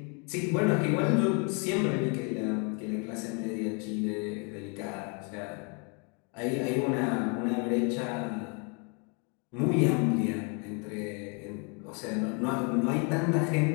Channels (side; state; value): right; quieter; 35.6 dB